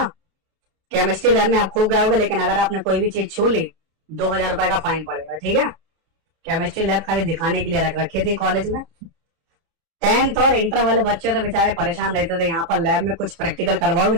केमिस्ट्री लैब में आप खूब गाओगे, लेकिन अगर आपने कोई भी चीज छू ली 2000 रुपए का फाइन पड़ेगा, ठीक है। केमिस्ट्री लैब खाली दिखाने के लिए रख रखी थी कॉलेज में। 10th और इंटर वाले बच्चे तो बेचारे परेशान रहते थे, यहाँ पर लैब में कुछ प्रैक्टिकल करवाओगे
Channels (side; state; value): left; late; 30 ms